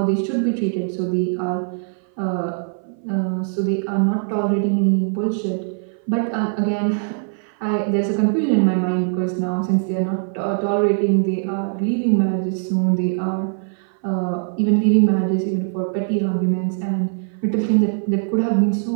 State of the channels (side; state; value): left; silent; 58 dB below the other